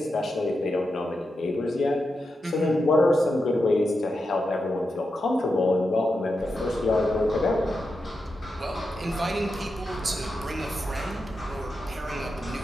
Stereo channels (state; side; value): normal; both; correlation 0.88